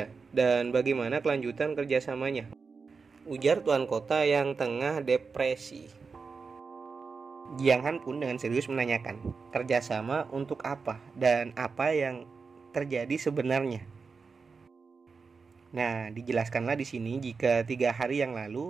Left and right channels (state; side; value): quieter; left; 4.9 dB